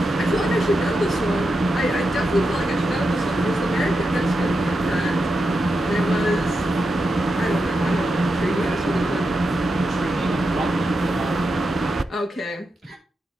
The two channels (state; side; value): normal; both; correlation 0.87